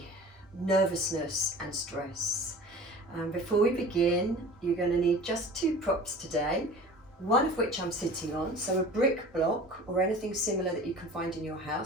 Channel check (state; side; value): normal; both; correlation 0.41